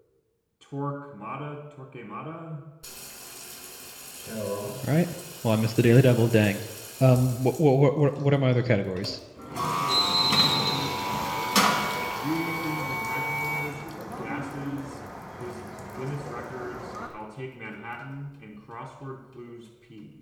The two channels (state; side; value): identical; both; correlation 1.00